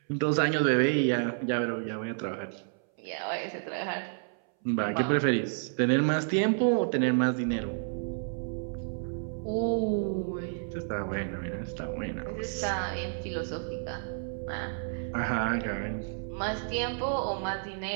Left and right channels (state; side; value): silent; left; 57 dB below the other